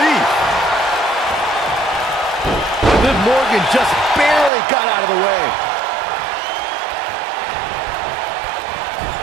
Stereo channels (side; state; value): left; drops out; at 4.5 s